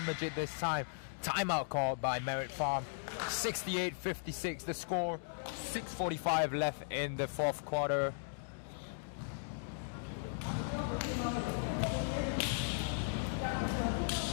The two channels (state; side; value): silent; right; digital silence